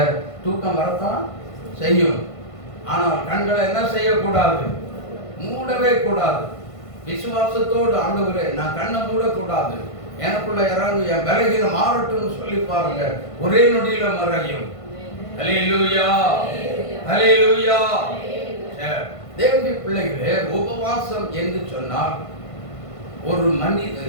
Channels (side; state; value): right; late; 1.5 ms